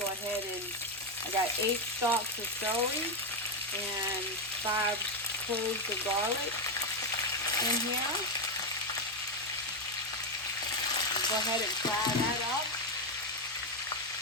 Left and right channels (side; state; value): both; normal; correlation 0.06